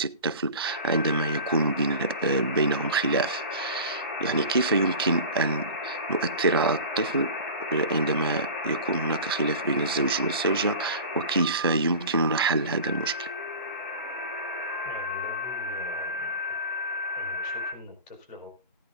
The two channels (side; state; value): both; inverted; correlation -0.36